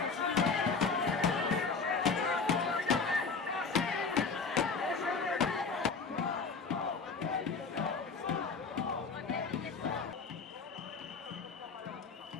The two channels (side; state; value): right; quieter; 4.8 dB